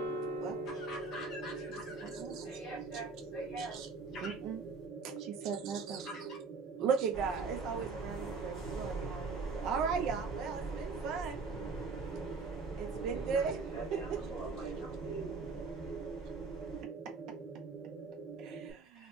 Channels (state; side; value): quieter; left; 4.6 dB